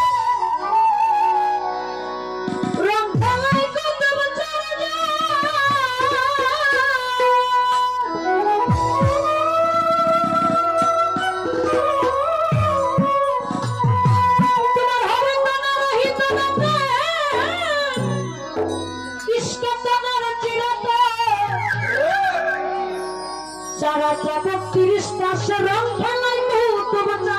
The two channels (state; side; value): noise; left; hum, 29 dB below the sound